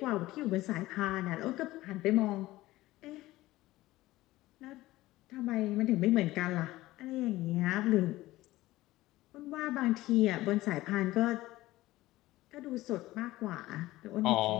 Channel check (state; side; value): quieter; right; 17.4 dB